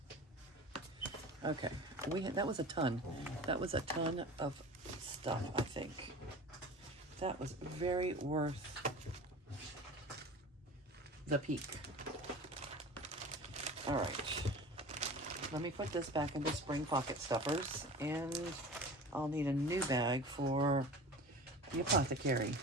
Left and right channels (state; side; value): normal; both; correlation 0.37